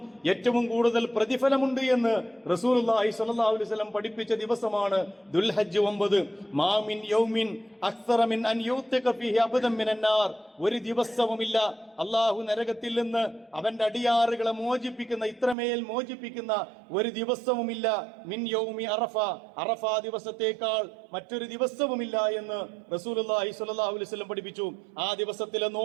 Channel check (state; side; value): drops out; left; at 15.6 s